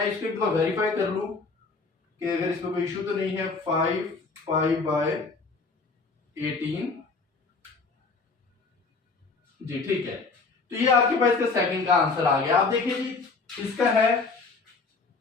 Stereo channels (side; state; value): right; quieter; 4.2 dB